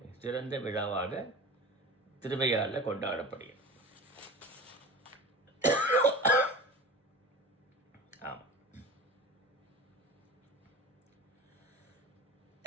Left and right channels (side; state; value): both; normal; correlation 0.34